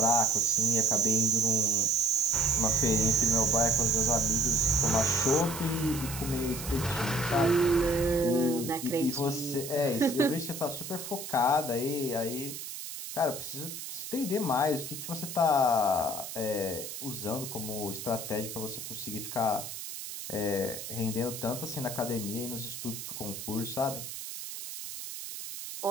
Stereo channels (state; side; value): noise; right; hiss, 8 dB below the sound